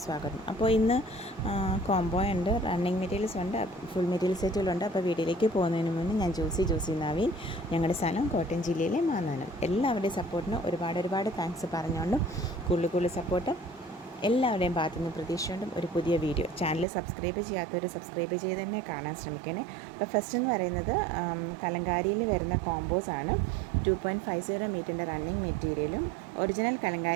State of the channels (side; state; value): left; drops out; at 16.9 s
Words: സ്വാഗതം. അപ്പോൾ ഇന്ന് കോംബോ ഉണ്ട്, റണ്ണിങ് മെറ്റീരിയൽസ് ഉണ്ട്, ഫുൾ മെറ്റീരിയൽ സെറ്റുകളുണ്ട്. അപ്പോൾ വീഡിയോയിലേക്ക് പോകുന്നതിന് മുന്നേ ഞാൻ ജോസി നവീൻ, ഞങ്ങളുടെ സ്ഥലം കോട്ടയം ജില്ലയിലെ മാന്നാനം. എല്ലാവരുടെയും സപ്പോർട്ടിന് ഒരുപാട് താങ്ക്സ് പറഞ്ഞുകൊണ്ടും കൂടുതൽ സപ്പോർട്ട് എല്ലാവരുടെയും ഭാഗത്തുനിന്ന് പ്രതീക്ഷിച്ചുകൊണ്ടും ഒരു പുതിയ വീഡിയോ. ചാനൽ സബ്സ്ക്രൈബ് ചെയ്യാത്തവർ സബ്സ്ക്രൈബ് ചെയ്ത് തന്നെ കാണാൻ ശ്രമിക്കണേ. അപ്പോൾ ഫസ്റ്റ് എന്ന് പറയുന്നത് കലങ്കാരിയിൽ വരുന്ന കോമ്പോസ് ആണ്. 2.50 മീറ്ററിൻ്റെ റണ്ണിങ് മെറ്റീരിയലും ഒറിജിനൽ